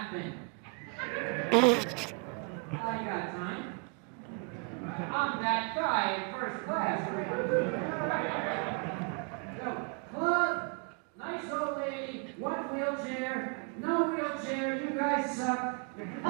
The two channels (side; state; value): left; quieter; 37.9 dB